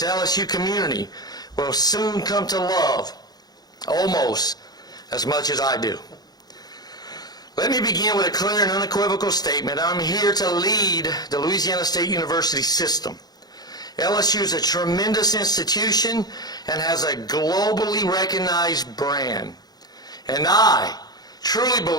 LSU community will soon come to love almost as much as I do. Let me begin with a clear and unequivocal statement. I'm here to lead the Louisiana State University system. LSU is a tremendous institution and has a globally recognized brand. And I truly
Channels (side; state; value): right; late; 0.19 ms